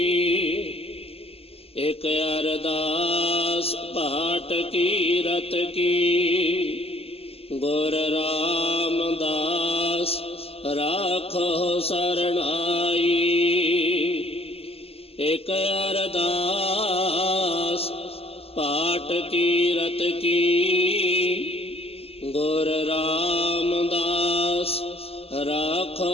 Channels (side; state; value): right; late; 0.29 ms